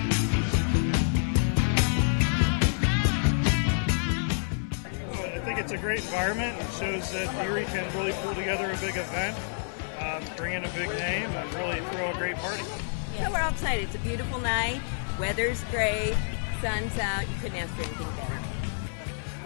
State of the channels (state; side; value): silent; right; 59 dB below the other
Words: I think it's a great environment. It shows that Erie can really pull together a big event, bring in a big name, and really throw a great party. So we're outside. It's a beautiful night. Weather's great. Sun's out. You couldn't ask for anything better.